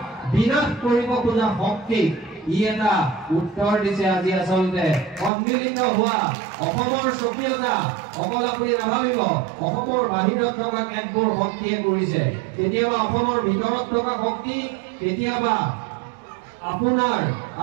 বিনাশ কৰিব খোজা শক্তিক ই এটা উত্তৰ দিছে। আজি আচলতে সন্মিলিত হোৱা অসমৰ স্বকীয়তা অকল আপুনি নাভাবিব অসমৰ বাহিৰত থকা কেতবোৰ শক্তিয়ে কৰিছে। কেতিয়াবা অসমৰ ভিতৰত থকা শক্তি, কেতিয়াবা আপোনাৰ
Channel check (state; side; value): drops out; left; at 5.3 s